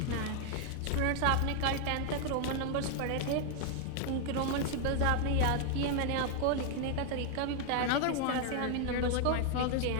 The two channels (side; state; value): both; different; correlation 0.00